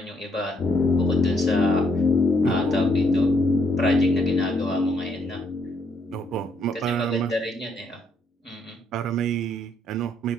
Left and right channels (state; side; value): normal; both; correlation 0.72